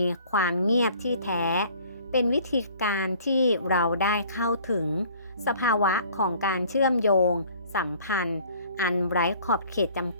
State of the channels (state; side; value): inverted; both; correlation -0.53